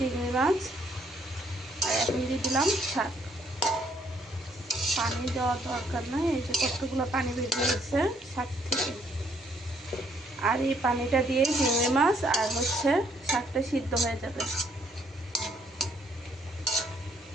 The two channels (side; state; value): both; normal; correlation 0.68